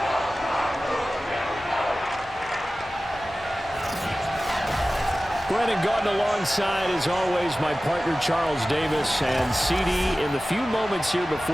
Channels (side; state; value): both; normal; correlation 0.96